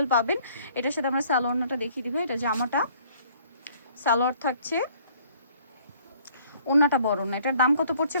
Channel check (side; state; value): both; inverted; correlation -0.59